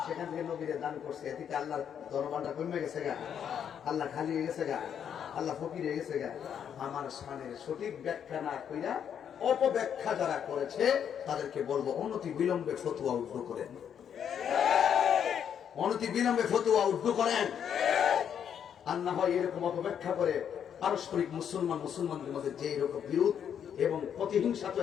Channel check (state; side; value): quieter; right; 8.5 dB